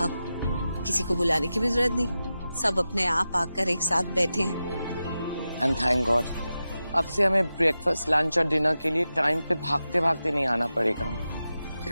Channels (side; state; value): both; inverted; correlation -0.92